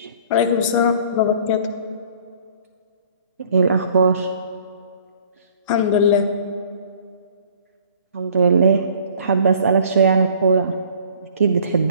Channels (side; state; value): both; inverted; correlation -0.52